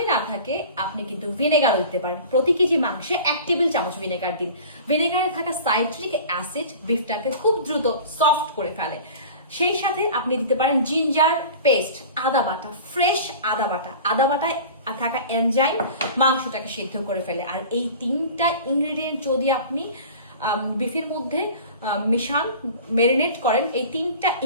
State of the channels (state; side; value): inverted; both; correlation -0.40